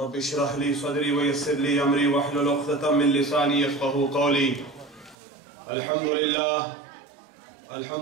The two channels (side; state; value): left; drops out; at 5.2 s